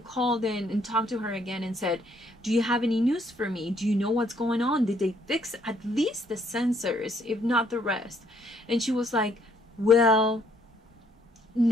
in and talked to her again and said, do you have any news for me? Do you know what's going on? Did they fix at least the sensors, if not the rest? And she was like, well,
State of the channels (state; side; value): normal; both; correlation 0.68